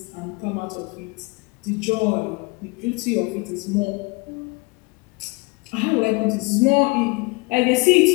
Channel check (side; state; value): right; quieter; 27.9 dB